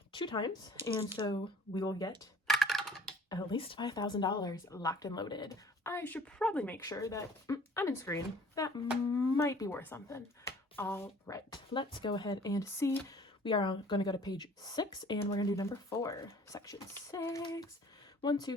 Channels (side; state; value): both; normal; correlation 0.52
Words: 2 times. And so we will get at least $5,000 locked and loaded. I should probably make sure that I'm in screen. That might be worth something. All right, let's go ahead and see. We are going to go to page 6, and we're going to do number 4, section 6. 1, 2,